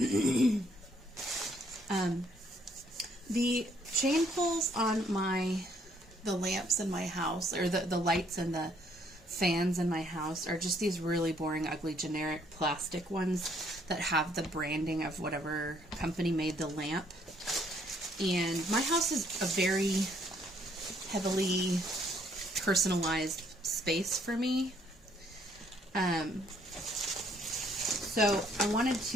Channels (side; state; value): both; normal; correlation 0.67